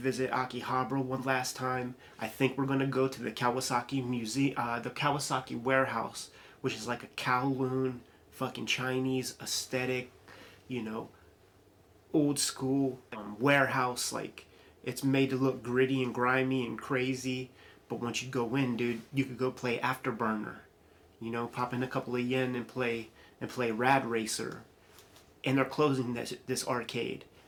Akihabara one last time. I think we're gonna go to the Kawasaki Museum, the Kawasaki Warehouse, which is like a Kowloon, fucking Chinese aesthetic, you know, old school warehouse. Like, it's made to look gritty and grimy and crazy. But once you go in, dude, you could go play Afterburner. You know, pop in a couple of yen and play Rad Racer. And they're closing this arcade,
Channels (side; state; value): both; identical; correlation 1.00